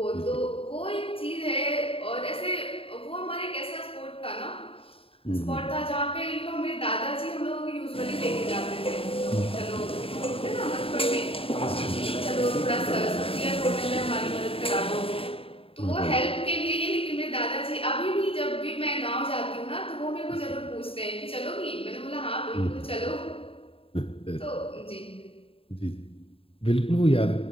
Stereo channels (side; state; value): right; late; 0.27 ms